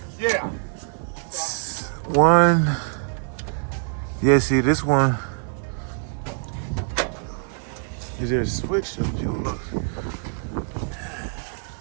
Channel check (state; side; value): silent; left; 56 dB below the other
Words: Yeah. One. Yeah, see this one. Is there a switch? If you look.